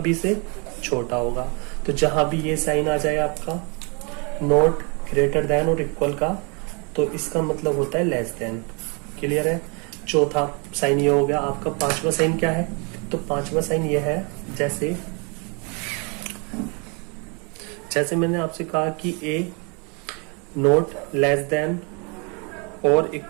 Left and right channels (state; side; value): quieter; left; 33.3 dB